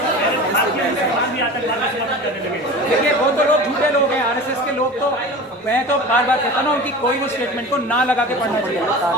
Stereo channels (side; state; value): both; normal; correlation 0.34